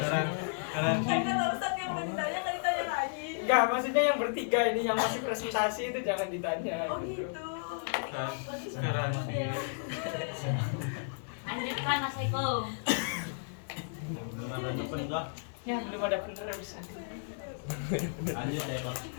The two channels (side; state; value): right; silent; digital silence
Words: Garansi. Kan kata Ustadz yang udah ditanya nggak ditanya lagi. Enggak, maksudnya yang bertiga ini yang masih presentasi itu jangan ditanya. Oh gitu. Garansi. Lanjutkan Mas Eko. Ya belum ada penerus. Lanjut ya Pak.